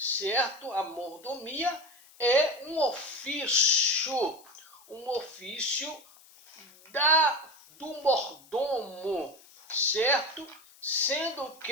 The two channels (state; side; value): noise; left; hiss, 25 dB below the sound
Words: A mordomia é um ofício do mordomo, certo? Sendo